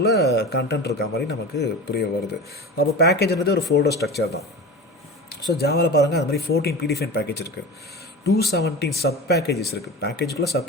கண்டென்ட் இருக்க மாதிரி நமக்கு புரிய வருது. அப்போ பேக்கேஜ்ன்றது ஒரு ஃபோல்டர் ஸ்ட்ரக்சர் தான். ஸோ ஜாவாவில் பாருங்கள், அது மாதிரி 14 ப்ரீடிஃபைன் பேக்கேஜ் இருக்குது, 217 சப் பேக்கேஜஸ் இருக்குது. பேக்கேஜுக்குள்ளே சப்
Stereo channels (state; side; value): normal; both; correlation 0.31